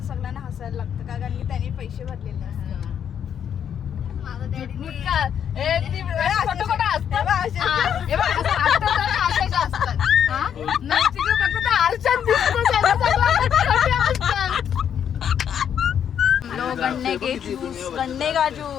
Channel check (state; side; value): quieter; right; 8.7 dB